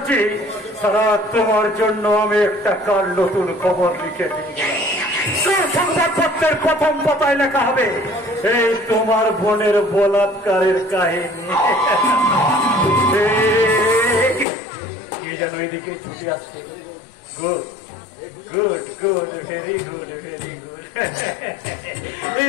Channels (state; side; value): drops out; right; at 14.5 s